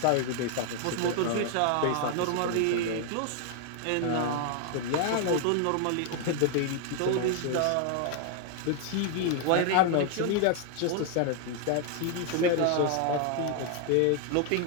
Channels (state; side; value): different; both; correlation 0.00